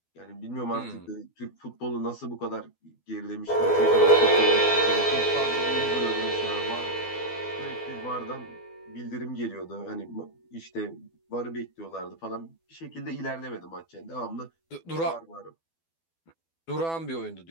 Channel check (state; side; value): late; right; 12 ms